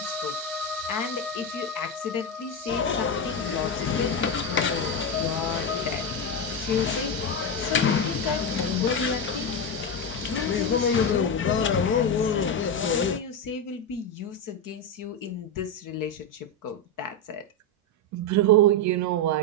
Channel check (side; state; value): both; normal; correlation 0.10